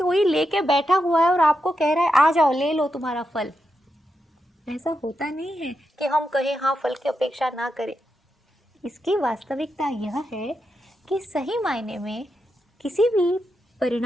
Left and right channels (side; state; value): both; normal; correlation 0.86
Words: लेके बैठा हुआ है और आपको कह रहा है आ जाओ ले लो तुम्हारा फल। ऐसा होता नहीं है कि हम कहें हाँ फल की अपेक्षा ना करें। इसकी वास्तविकता यह है कि सही मायने में किसी भी